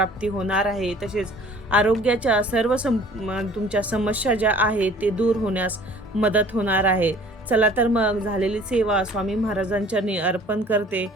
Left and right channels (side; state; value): both; normal; correlation 0.51